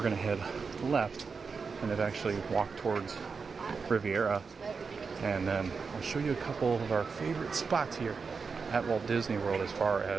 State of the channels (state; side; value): quieter; left; 5.1 dB